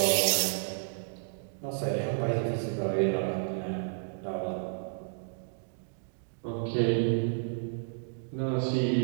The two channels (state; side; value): silent; left; digital silence